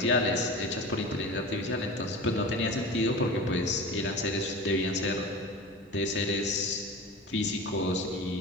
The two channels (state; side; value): normal; both; correlation 0.33